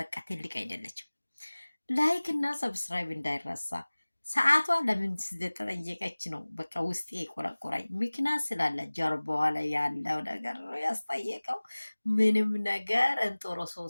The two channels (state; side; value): inverted; both; correlation -1.00